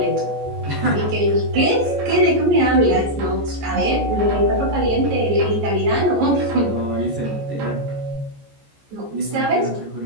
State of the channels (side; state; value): left; late; 14 ms